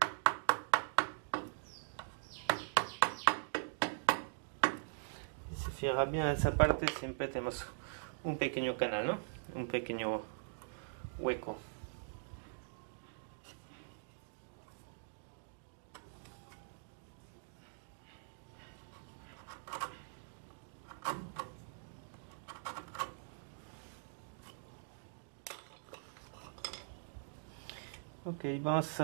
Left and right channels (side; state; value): left; silent; digital silence